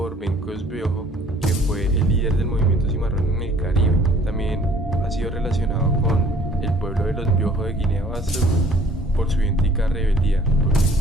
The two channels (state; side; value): normal; both; correlation 0.55